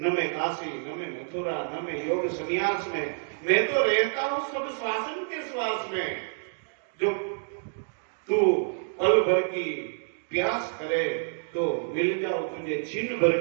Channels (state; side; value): silent; left; digital silence